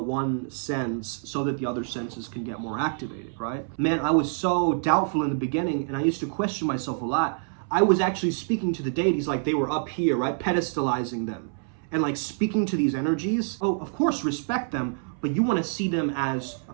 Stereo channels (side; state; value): left; silent; 60 dB below the other